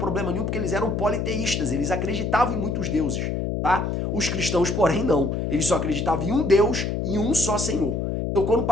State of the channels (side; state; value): left; noise; hum, 1 dB below the sound